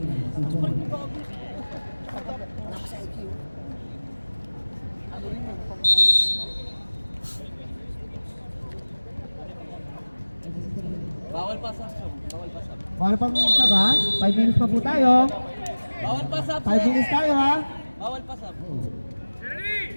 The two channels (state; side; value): inverted; both; correlation -1.00